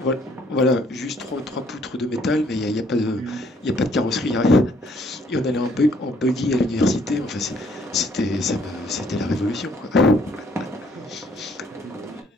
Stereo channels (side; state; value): both; normal; correlation 0.64